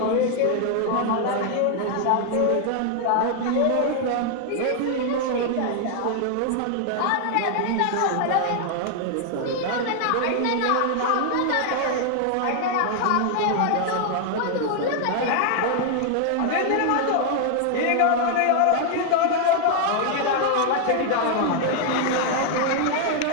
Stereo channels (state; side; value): different; both; correlation 0.00